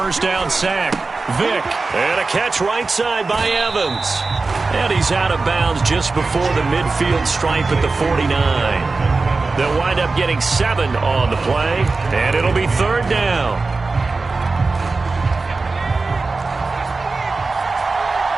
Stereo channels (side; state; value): left; quieter; 3.8 dB